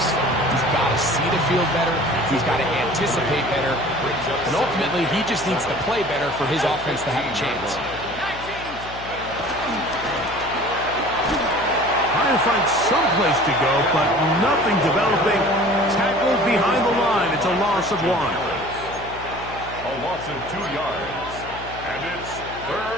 He's got to see the field better. He's got to anticipate better. And ultimately, he just needs to play better for his offense to have a chance. Trying to find some place to go, but nothing developing. Tackled behind the line. It's a loss of 1. A loss of 2 yards. And it's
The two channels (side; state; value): left; noise; hum, 15 dB below the sound